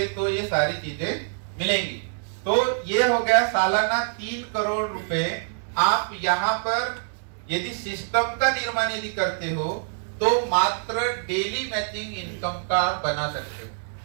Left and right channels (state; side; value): silent; left; digital silence